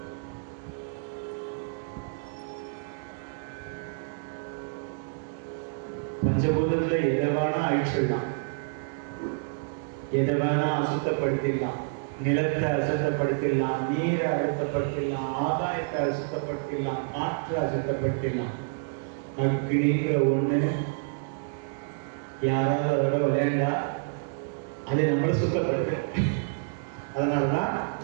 பஞ்சபூதத்துல எதை வேணா அழிச்சிடலாம், எதை வேணா அசுத்தப்படுத்திடலாம். நிலத்தை அசுத்தப்படுத்திடலாம், நீரை அசுத்தப்படுத்திடலாம், ஆதாயத்தை அசுத்தப்படுத்திடலாம், காற்றை அசுத்தப்படுத்திடலாம். அக்னிங்கிற ஒண்ணு யாராவது அதோட விளையாண்டா அதை நம்மளை சுத்தப்படுத்த. அதனாலதான்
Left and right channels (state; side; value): silent; left; digital silence